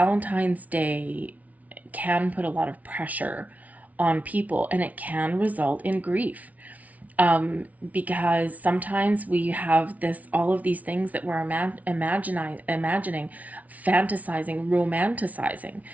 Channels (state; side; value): late; left; 0.071 ms